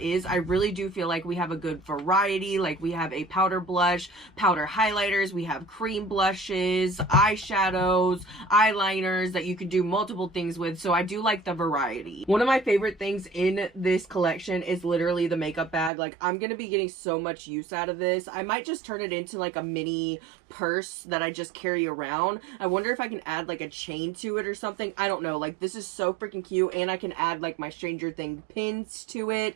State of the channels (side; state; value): left; drops out; at 15.9 s